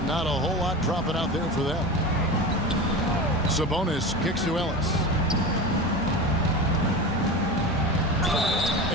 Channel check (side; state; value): both; normal; correlation 0.28